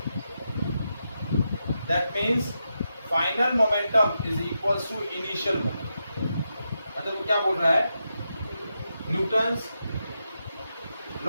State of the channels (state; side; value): inverted; both; correlation -0.86